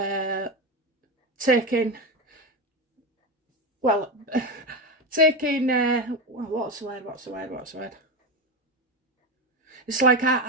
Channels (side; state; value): both; normal; correlation 0.17